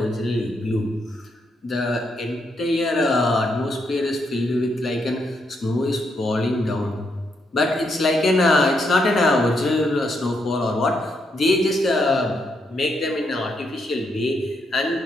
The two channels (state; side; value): normal; both; correlation 0.78